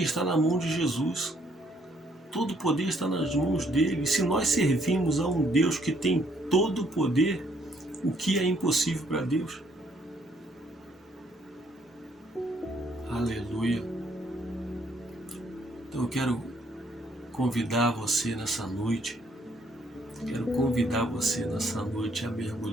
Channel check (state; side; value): normal; both; correlation 0.68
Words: está na mão de Jesus. Todo o poder está nas mãos dele. E se nós servimos a um Deus que tem todo o poder, o que é impossível para Deus? Aleluia. Então eu quero convidar você nessa noite. Quero convidar você nessa noite a